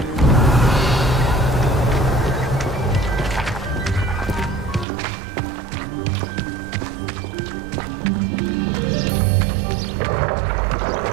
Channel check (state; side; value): drops out; left; at 4.9 s